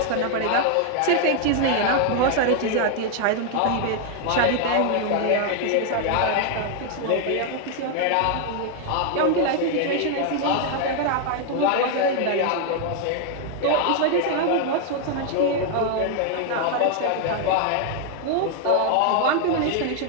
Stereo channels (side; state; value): both; different; correlation 0.00